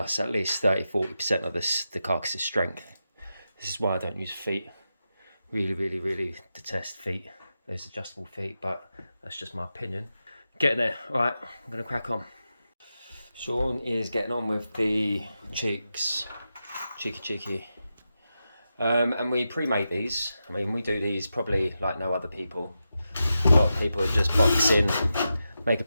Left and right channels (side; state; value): both; inverted; correlation -0.89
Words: at least 30-40% of the carcass's strength. This is why I don't use feet. Really detest feet, those adjustable feet, but that's just my opinion. Getting there. All right, I'm going to crack on. Sean is getting on with the cheeks. Cheeky. And we pre-make these. I mean, we do these probably like no other people. A lot of people just box in, make a